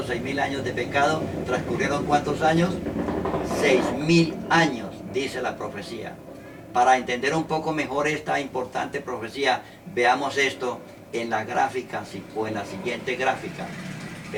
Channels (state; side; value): identical; both; correlation 1.00